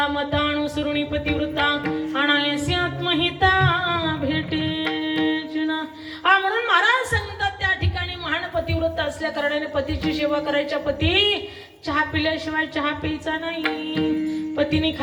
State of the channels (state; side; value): identical; both; correlation 1.00